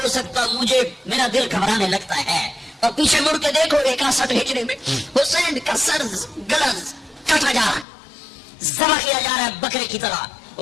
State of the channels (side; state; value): right; drops out; at 7.9 s